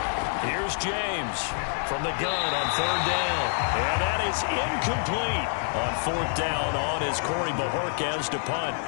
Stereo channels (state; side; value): silent; right; digital silence